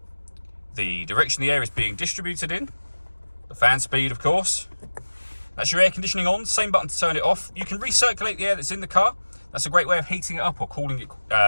the direction the air is being distributed in, the fan speed, of course. That's your air conditioning on, same button to turn it off. You can recirculate the air that's in the car. That's a great way of heating it up or cooling it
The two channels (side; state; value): both; inverted; correlation -1.00